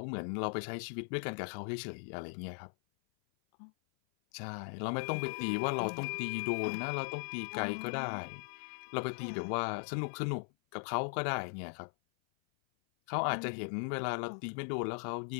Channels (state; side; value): silent; right; 52 dB below the other